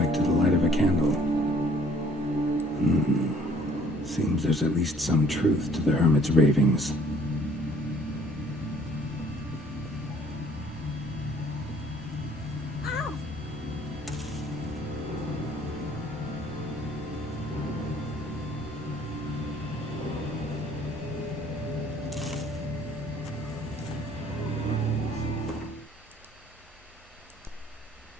to the light of a candle. Seems there's at least some truth to the hermit's ravings.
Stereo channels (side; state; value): both; normal; correlation 0.58